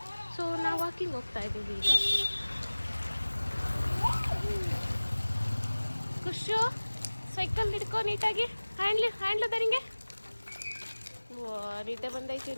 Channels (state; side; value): inverted; both; correlation -1.00